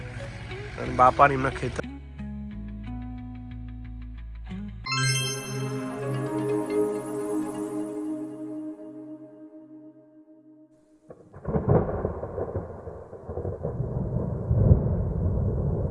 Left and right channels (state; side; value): identical; both; correlation 1.00